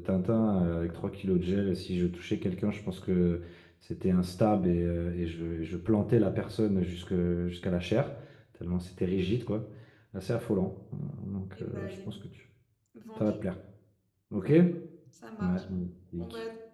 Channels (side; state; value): both; identical; correlation 1.00